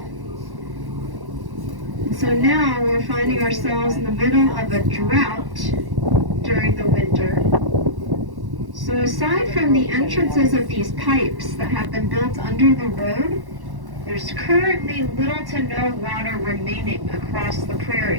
And so now we're finding ourselves in the middle of a drought during the winter. So aside from the entrances of these pipes that have been built under the road, there's currently little to no water remaining across the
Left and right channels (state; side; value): late; left; 1.1 ms